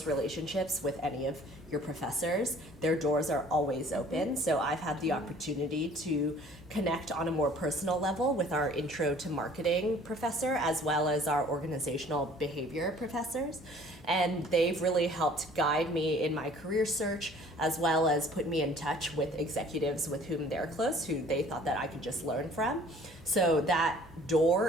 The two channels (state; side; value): normal; both; correlation 0.52